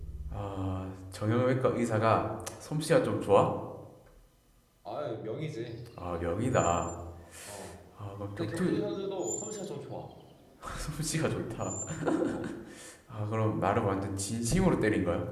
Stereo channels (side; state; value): both; identical; correlation 1.00